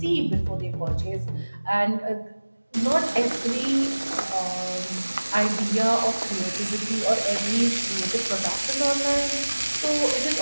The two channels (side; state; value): both; inverted; correlation -1.00